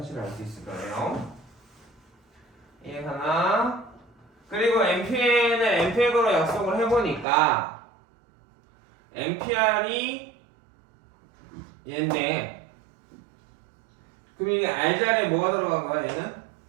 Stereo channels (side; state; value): left; drops out; at 7.2 s